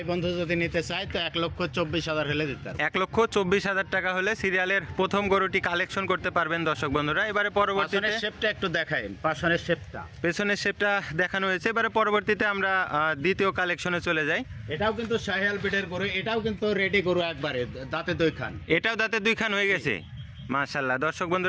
বন্ধু যদি নিতে চায় তো 1,24,000 হলে দিতে পারবে। 1,24,000 টাকা হলে সিরিয়ালের প্রথম গরুটি কালেকশন করতে পারবেন দর্শক বন্ধুরা। এবারে পরবর্তীতে শেপটা একটু দেখাইন। পেছনের শেপটা দেখানো হয়েছে। এবারে পরবর্তীতে আমরা দ্বিতীয় কালেকশনে চলে যাই। এটাও কিন্তু শাহিওয়াল ব্রিডের গরু। এটাও কিন্তু রেডি গরু, একবারে দাঁতে 2 খান। এটাও দাঁতে 2 খান হয়ে গেছে, মাশাআল্লাহ। দর্শক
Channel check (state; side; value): identical; both; correlation 1.00